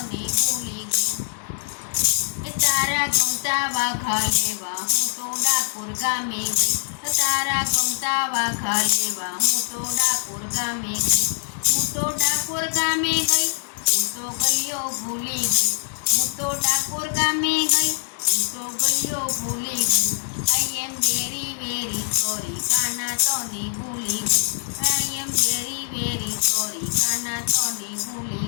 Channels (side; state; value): right; silent; 63 dB below the other